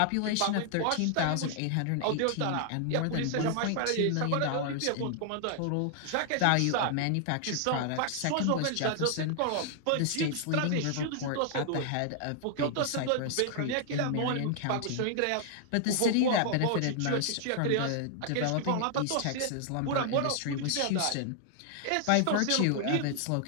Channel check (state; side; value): different; both; correlation 0.00